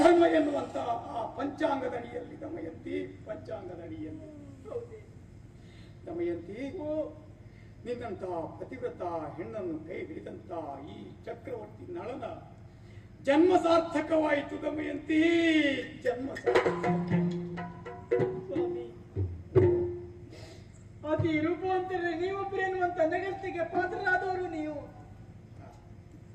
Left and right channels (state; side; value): identical; both; correlation 1.00